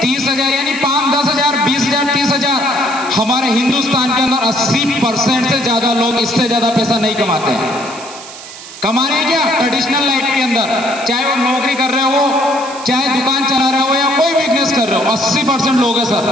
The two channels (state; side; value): noise; right; hiss, 15 dB below the sound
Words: 30,000 यानी 5, 10,000, 20,000, 30,000, हमारे हिंदुस्तान के अंदर 80% से ज्यादा लोग इससे ज्यादा पैसा नहीं कमाते हैं। कमा रहे हैं क्या? ट्रेडिशनल लाइफ के अंदर, चाहे वो नौकरी कर रहे हो, चाहे दुकान चला रहे हो या कोई बिजनेस कर रहे हो, 80% लोग है सर।